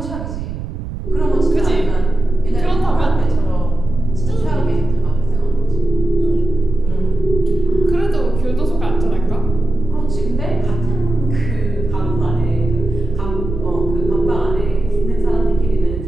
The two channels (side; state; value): right; noise; rumble, 7 dB below the sound